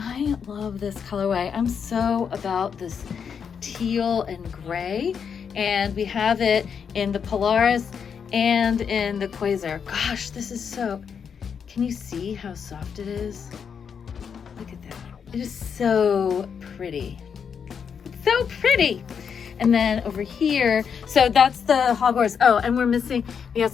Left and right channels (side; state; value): right; quieter; 6.9 dB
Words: love this colorway. I'm so about this teal and gray. And we have it in the Polaris and in the Quasar. Gosh, this is so, can you see how soft it is? Look at that. It is so pretty. It's so pretty. And then over here, so that's the Hogwarts. Oh, and we